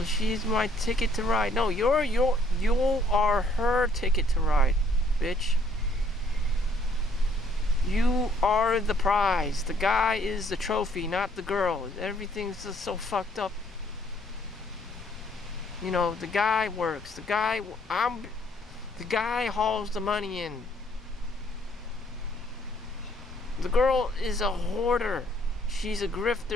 she's my ticket to ride. No, you are her ticket to ride, bitch. You are the prize. The guy is the trophy, not the girl. Everything's just so fucked up. You know, the guy works. The guy hauls the money in. The girl is a hoarder. She's a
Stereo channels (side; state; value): both; normal; correlation 0.64